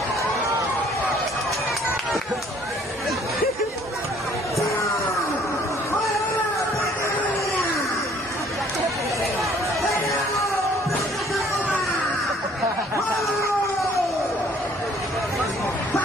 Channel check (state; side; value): normal; both; correlation 0.58